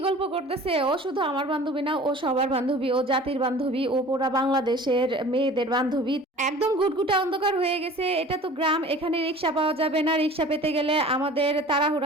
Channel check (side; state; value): both; normal; correlation 0.43